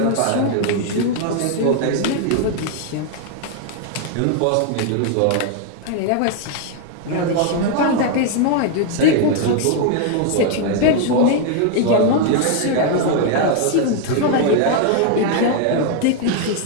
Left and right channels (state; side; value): different; both; correlation 0.00